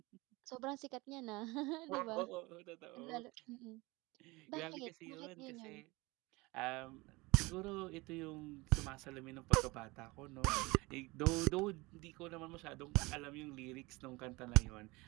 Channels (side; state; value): left; quieter; 23.2 dB